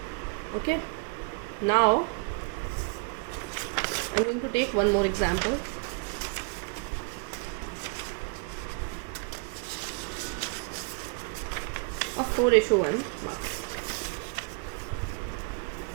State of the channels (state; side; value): quieter; left; 33.5 dB